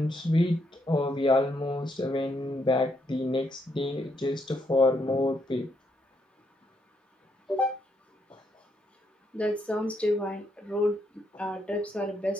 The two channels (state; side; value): normal; both; correlation 0.77